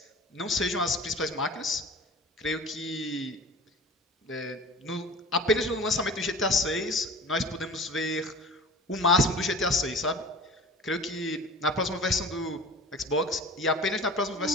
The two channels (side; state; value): both; normal; correlation 0.39